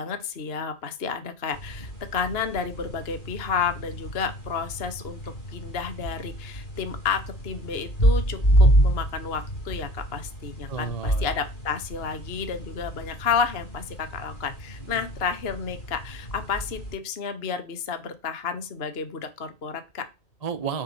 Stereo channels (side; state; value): right; late; 2.8 ms